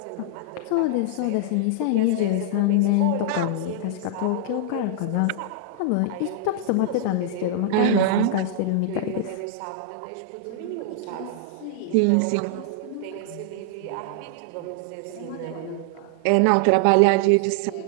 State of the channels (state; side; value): different; both; correlation -0.01